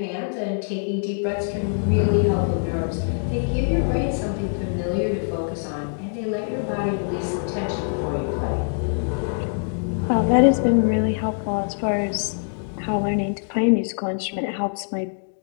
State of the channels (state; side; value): silent; right; 63 dB below the other